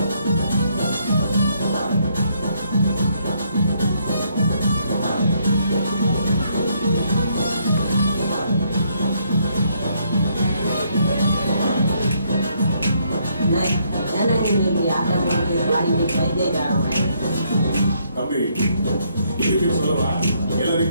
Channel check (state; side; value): inverted; both; correlation -0.71